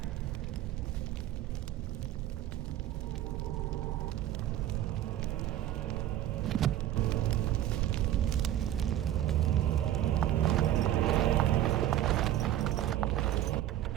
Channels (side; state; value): left; quieter; 12.6 dB